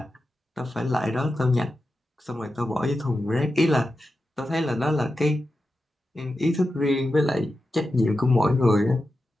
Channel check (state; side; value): normal; both; correlation 0.91